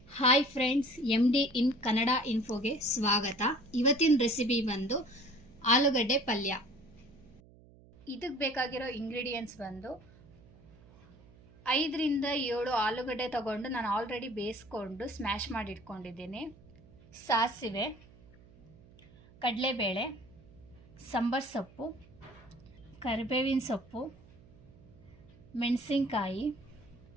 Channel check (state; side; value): noise; right; hum, 24 dB below the sound